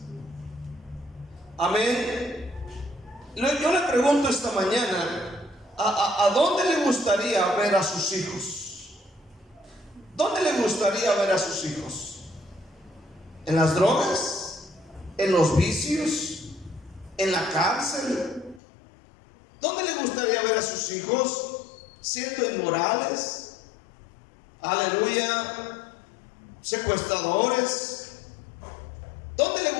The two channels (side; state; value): right; drops out; at 18.6 s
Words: Amén. Yo le pregunto esta mañana: ¿a dónde le gustaría ver a sus hijos? ¿Dónde le gustaría ver a sus hijos? ¿En las drogas? ¿En los vicios? ¿En la cárcel? ¿Dónde le gustaría ver a sus hijos? ¿Siendo inmorales? Aleluya. ¿Secuestradores? ¿Dónde le